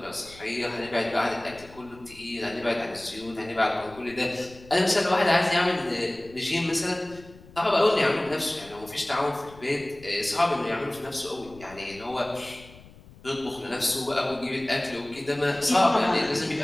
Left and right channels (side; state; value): left; noise; rumble, 21 dB below the sound